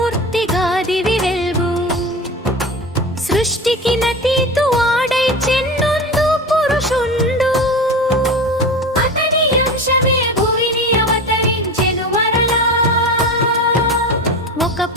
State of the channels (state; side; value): normal; both; correlation 0.29